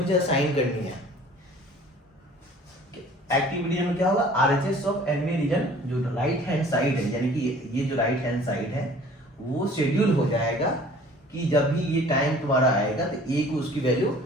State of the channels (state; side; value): normal; both; correlation 0.50